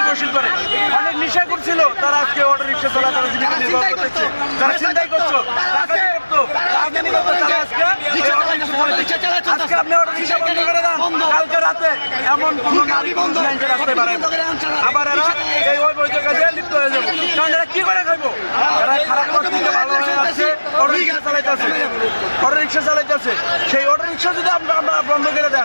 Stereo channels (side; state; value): both; inverted; correlation -1.00